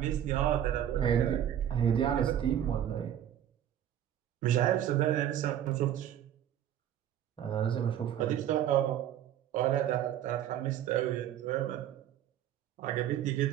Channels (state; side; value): quieter; left; 10.7 dB